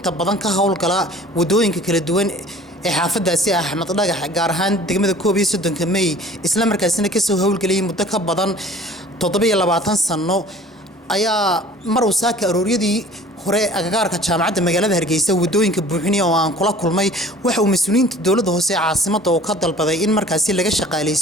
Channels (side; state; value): both; normal; correlation 0.48